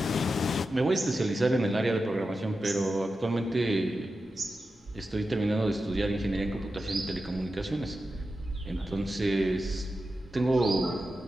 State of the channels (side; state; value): both; normal; correlation 0.91